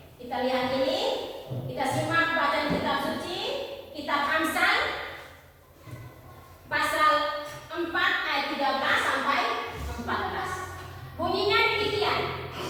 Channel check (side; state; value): both; identical; correlation 1.00